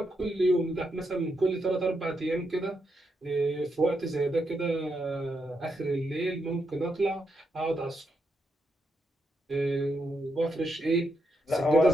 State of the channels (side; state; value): both; normal; correlation 0.81